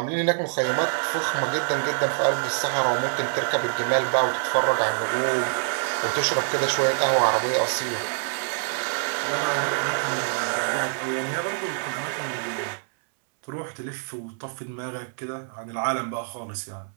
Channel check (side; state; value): left; silent; 61 dB below the other